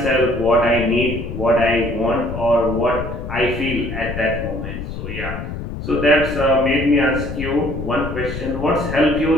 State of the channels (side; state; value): left; noise; rumble, 7 dB below the sound